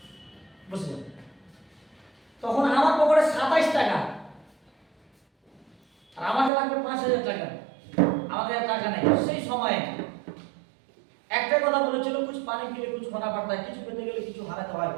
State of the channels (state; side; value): drops out; left; at 6.5 s